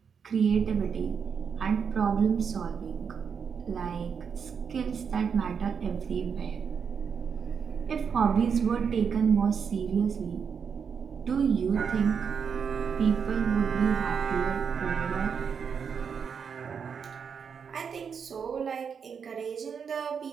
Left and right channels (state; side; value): quieter; left; 6.6 dB